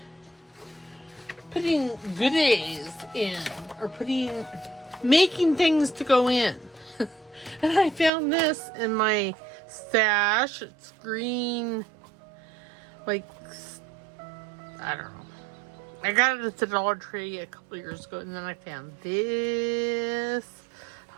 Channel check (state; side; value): drops out; left; at 8.1 s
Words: goodies in, or making things to go in. And I found this in my stash. It's green, like, I don't know. I got it at the Dollar Tree a couple years ago, and then I found this.